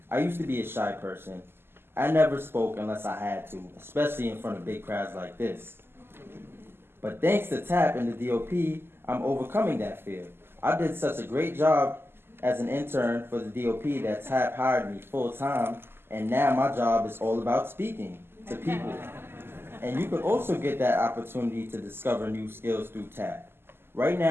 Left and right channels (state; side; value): late; left; 0.11 ms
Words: I used to be a shy person. I never spoke unless I had to, especially in front of big crowds like this. But thanks to TAP and the DOP, I'm overcoming that fear. I did such a great job as an intern for the DOP that TAP hired me full-time, and now my job is all about speaking to people. And you could also get that opportunity to discover new skills through TAP. Right